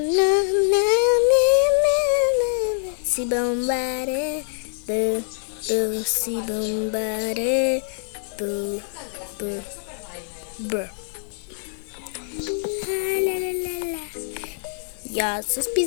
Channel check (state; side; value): silent; right; digital silence